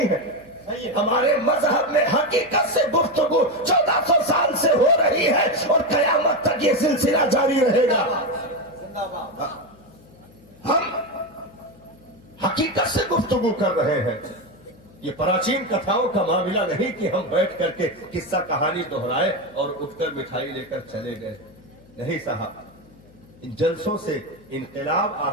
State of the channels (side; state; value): left; noise; hum, 26 dB below the sound